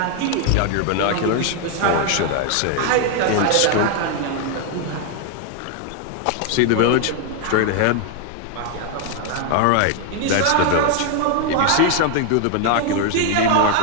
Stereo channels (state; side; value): different; both; correlation 0.00